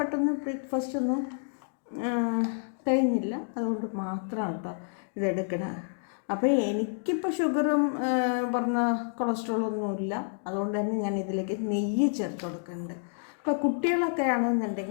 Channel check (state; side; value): silent; right; digital silence